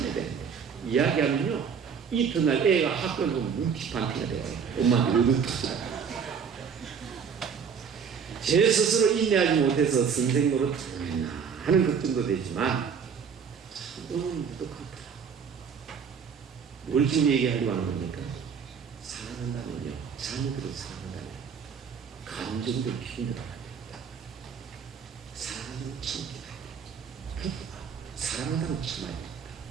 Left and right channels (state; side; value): quieter; left; 6.6 dB